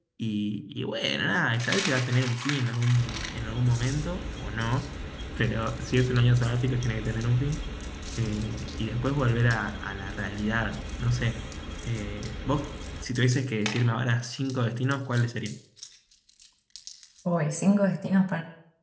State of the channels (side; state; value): both; identical; correlation 1.00